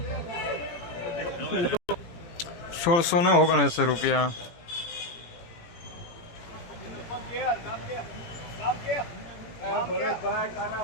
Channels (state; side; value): late; right; 17 ms